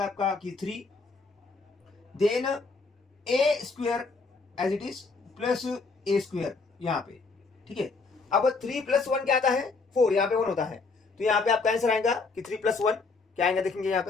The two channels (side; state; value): right; quieter; 4.1 dB